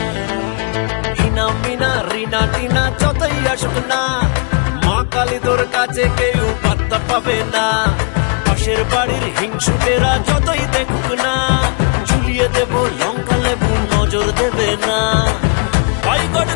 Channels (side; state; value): right; quieter; 37.5 dB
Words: মিনা রিনা টিনা যতই আসুক না, মা কালী তোর কাছে কেউ পাত্তা পাবে না। পাশের বাড়ির হিংসুটেরা যতই দেখুক না, ঝুলিয়ে দেব লঙ্কা লেবু নজর দেবে না। বয়কট